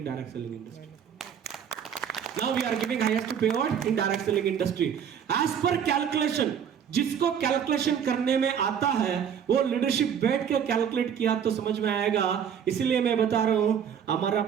direct selling industry. Now we are giving highest payout in direct selling industry. As per calculation, जिसको कैलकुलेशन करने में आता है वो लीडरशिप बैठ के कैलकुलेट किया तो समझ में आएगा। इसलिए मैं बता रहा हूं, हमारा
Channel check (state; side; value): quieter; left; 8.1 dB